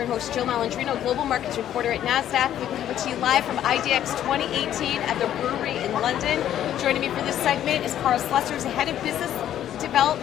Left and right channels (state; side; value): quieter; right; 11.1 dB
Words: host, Jill Malandrino, Global Markets Reporter at Nasdaq. We're coming to you live from IDX 2018 at the Brewery in London. Joining me for this segment is Carl Slesser, who's the Head of Business